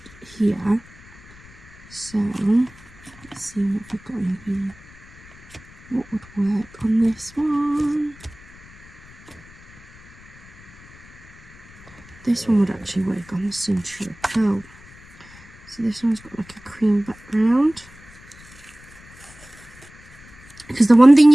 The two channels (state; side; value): noise; left; rumble, 22 dB below the sound